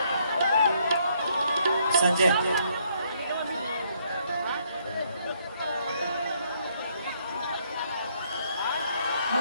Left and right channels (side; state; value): both; inverted; correlation -0.70